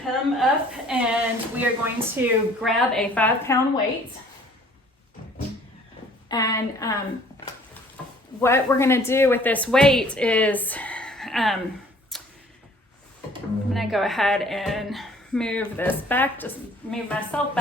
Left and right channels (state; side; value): normal; both; correlation 0.55